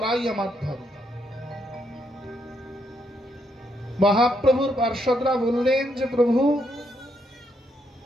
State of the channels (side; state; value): both; normal; correlation 0.76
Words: আমার ধর্ম। মহাপ্রভুর পার্ষদরা বললেন যে প্রভু,